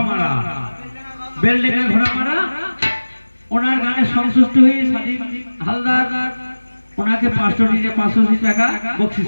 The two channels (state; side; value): inverted; both; correlation -1.00